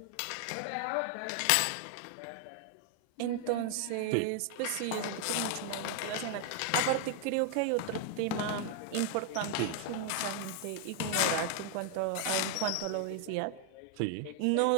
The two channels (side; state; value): both; different; correlation 0.00